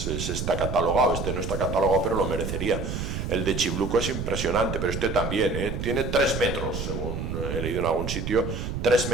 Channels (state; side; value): noise; right; rumble, 4 dB below the sound